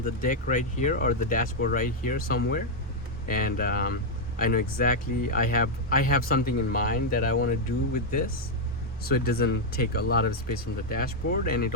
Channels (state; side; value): normal; both; correlation 0.00